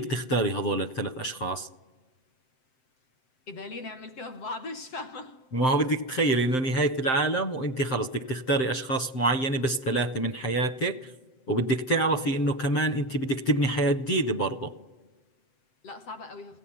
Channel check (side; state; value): right; late; 7.7 ms